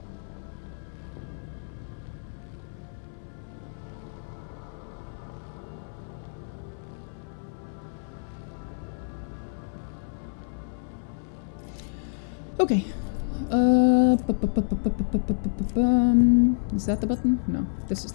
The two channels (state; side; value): silent; right; 59 dB below the other